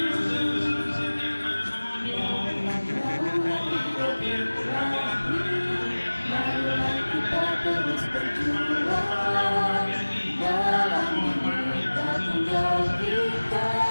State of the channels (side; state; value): both; inverted; correlation -1.00